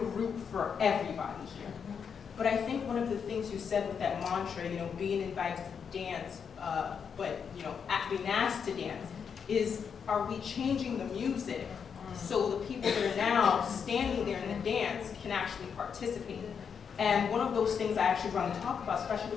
for everybody here. But I think one of the things you said with that mantra, being invited to dance, but being asked to dance, is are we changing the music so the people that are now standing there in the dance can actually participate? And one of those things I actually want to talk about, especially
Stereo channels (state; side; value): quieter; right; 6.8 dB